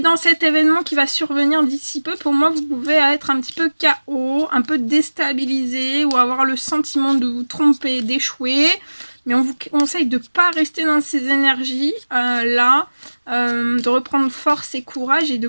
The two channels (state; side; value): inverted; both; correlation -1.00